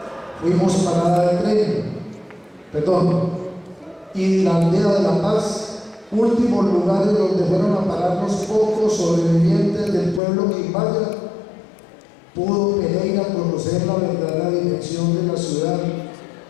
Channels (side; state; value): right; drops out; at 10.2 s